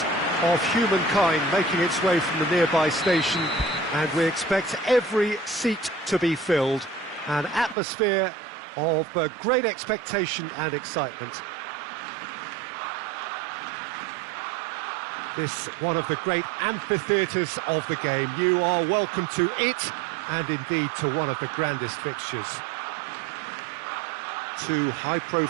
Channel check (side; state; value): left; drops out; at 7.8 s